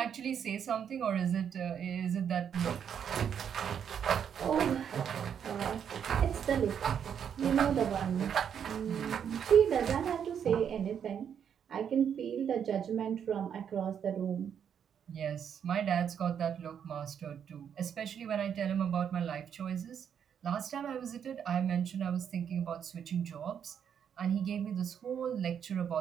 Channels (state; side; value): quieter; left; 8.2 dB